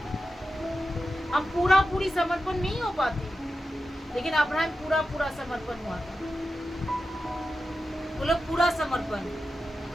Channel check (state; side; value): normal; both; correlation 0.91